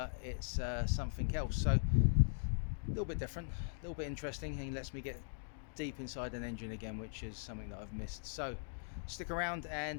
it's something else. So a little bit different, a little bit interesting, and lets me get deep inside an engine again, which is something that I've missed. So stick around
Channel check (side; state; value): right; silent; digital silence